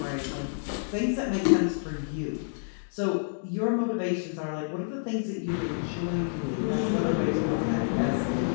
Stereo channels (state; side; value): silent; right; digital silence